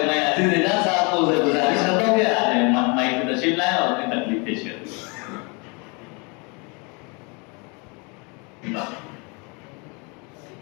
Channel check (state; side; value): quieter; right; 31.1 dB